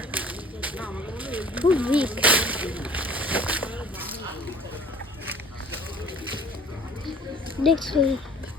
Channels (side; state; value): both; normal; correlation 0.50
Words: খুব উইক। দেখছেন